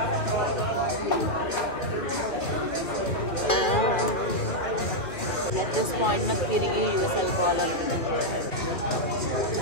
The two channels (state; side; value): late; right; 2.5 ms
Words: At this point, నాకు తిరిగి US వెళ్ళిపోవాలనుకుంటుంది.